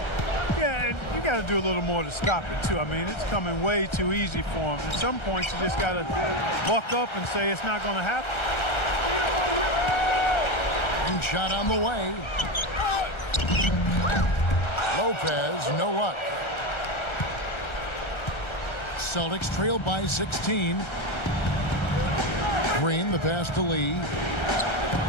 Yeah, and you got to do a little more to stop it, too. I mean, it's coming way too easy for them. At some points, you just got to buck up and say it's not going to happen. And shot on the way. Lopez, no luck. Celtics trail by 16. Green, the pass to Lee.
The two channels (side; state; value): right; late; 1.3 ms